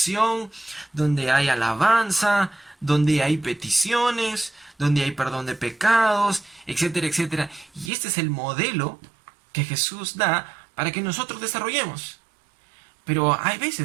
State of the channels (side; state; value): left; drops out; at 7.9 s